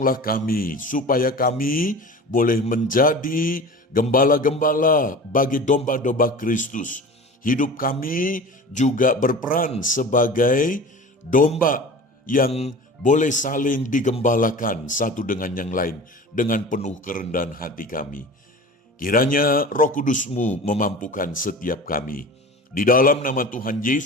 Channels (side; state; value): both; normal; correlation 0.36